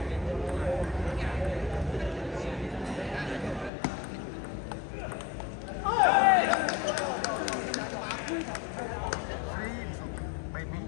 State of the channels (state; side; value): drops out; right; at 3.7 s